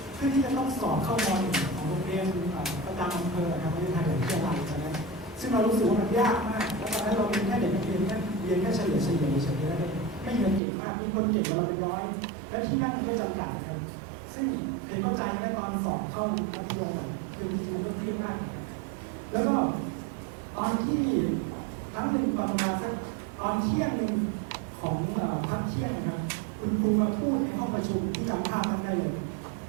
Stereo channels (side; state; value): left; drops out; at 10.6 s